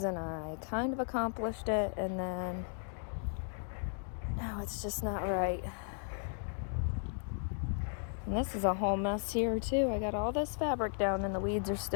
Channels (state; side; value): silent; right; 54 dB below the other